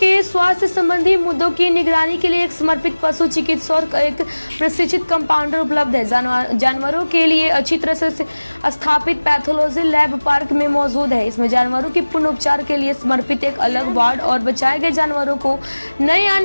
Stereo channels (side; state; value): both; inverted; correlation -1.00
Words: स्वास्थ्य संबंधी मुद्दों की निगरानी के लिए एक समर्पित पशु चिकित्सक और एक प्रशिक्षित कंपाउंडर उपलब्ध है। जानवरों के लिए अच्छी तरह से स्थापित पैथोलॉजी लैब पार्क में मौजूद है। इसमें जानवरों के पूर्ण उपचार के लिए समर्पित एक अलग वार्ड और बचाए गए जानवरों को नए